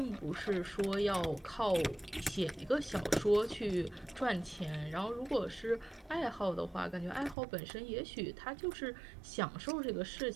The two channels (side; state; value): left; drops out; at 7.4 s